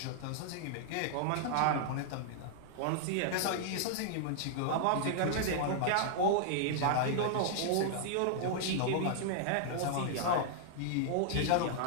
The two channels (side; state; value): both; different; correlation -0.01